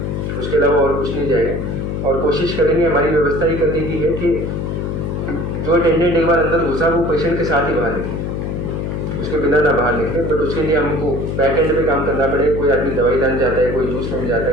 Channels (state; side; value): noise; left; hum, 3 dB below the sound